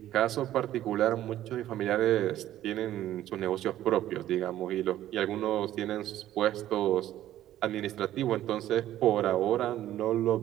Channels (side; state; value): left; quieter; 13.0 dB